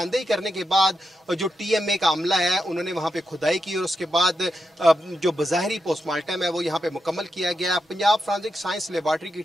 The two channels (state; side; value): normal; both; correlation 0.86